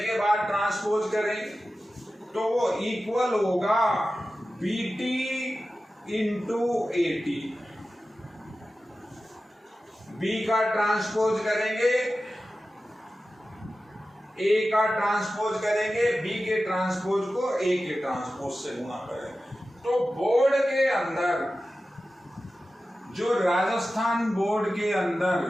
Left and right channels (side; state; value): both; normal; correlation 0.94